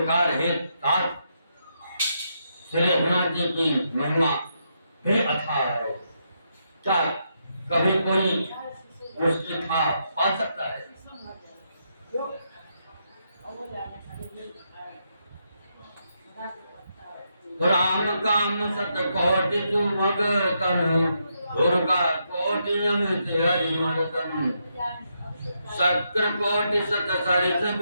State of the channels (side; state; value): both; inverted; correlation -0.80